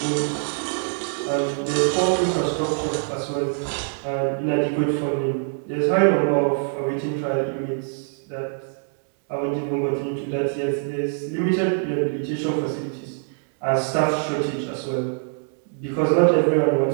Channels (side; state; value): left; silent; digital silence